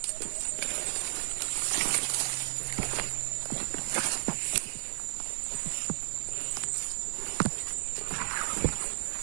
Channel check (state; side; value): silent; left; 56 dB below the other